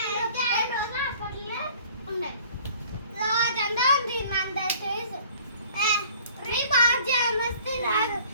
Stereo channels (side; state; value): both; inverted; correlation -0.52